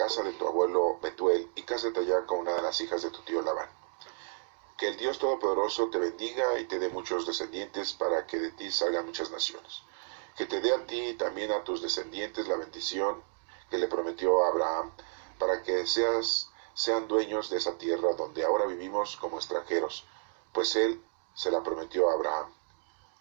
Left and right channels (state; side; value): silent; left; 57 dB below the other